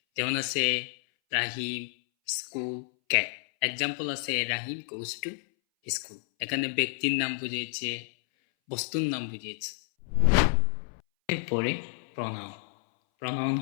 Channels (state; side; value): silent; right; 58 dB below the other